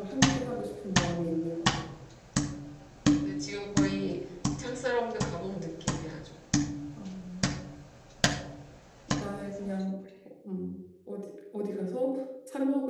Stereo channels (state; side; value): identical; both; correlation 1.00